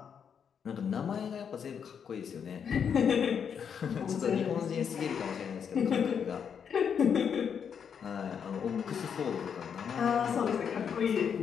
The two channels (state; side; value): quieter; right; 7.4 dB